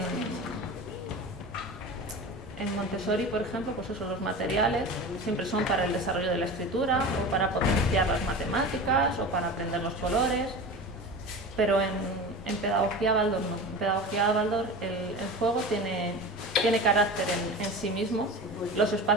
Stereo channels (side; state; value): both; normal; correlation 0.31